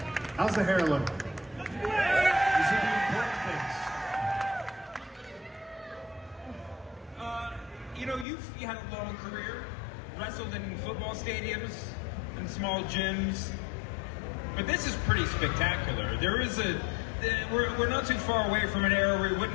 How's the hair look? These are the important things. You had a long career, wrestled in football stadiums and small gyms, but this is pretty spectacular. We're not too far away from an era where we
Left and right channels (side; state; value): right; drops out; at 8.2 s